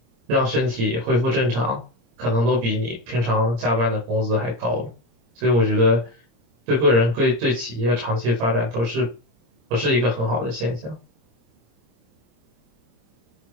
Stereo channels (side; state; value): left; late; 26 ms